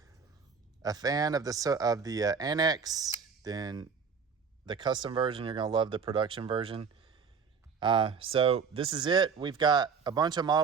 a fan of the Anax, then the custom version, you're going to love the production version. So this is it. We've got a bunch of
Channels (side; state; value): left; quieter; 5.9 dB